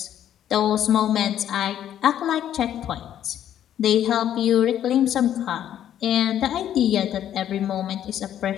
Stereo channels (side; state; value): right; quieter; 10.8 dB